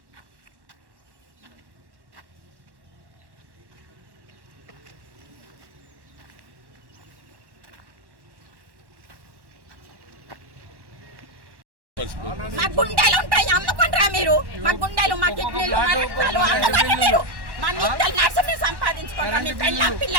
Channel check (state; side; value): late; left; 1.1 ms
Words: మా గుండెలు ఉంటాయి, అమ్ముకుంటారా మీరు? మా గుండెలు, మా కిడ్నీలు, మా రక్తాలు అమ్ముకుంటారా మీరు? మా నిత్యాలు నర్సుని సంపాదించుకుంటారా? మీ